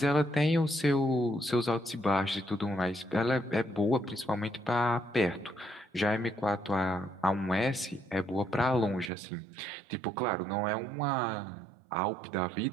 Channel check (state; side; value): drops out; left; at 9.1 s